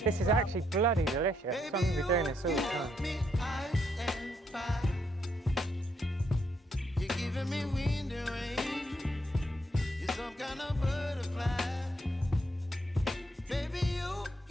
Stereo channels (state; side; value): normal; both; correlation 0.75